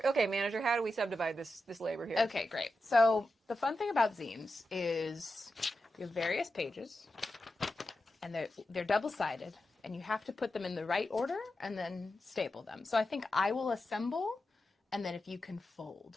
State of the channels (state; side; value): normal; both; correlation 0.90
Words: okay, manager. How do we subdivide this labor here? Okay, great. So the fun thing about zines is you have various pages, and they're double-sided, and you have to put them in the right order and then staple them. So I think I will assemble, and then if you can